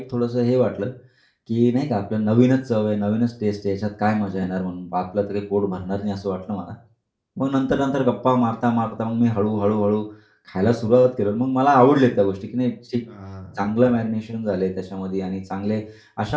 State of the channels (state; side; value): identical; both; correlation 1.00